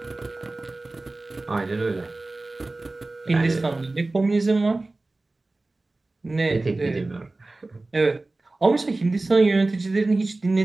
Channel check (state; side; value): quieter; left; 3.1 dB